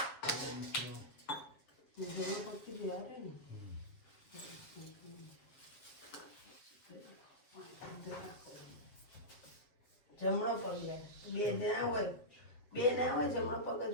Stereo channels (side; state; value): right; late; 7.6 ms